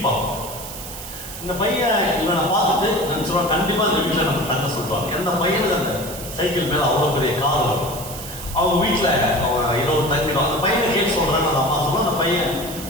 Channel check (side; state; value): right; noise; hiss, 11 dB below the sound